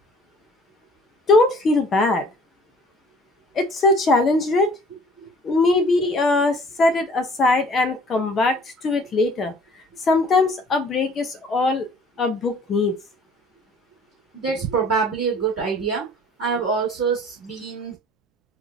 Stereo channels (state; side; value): normal; both; correlation 0.52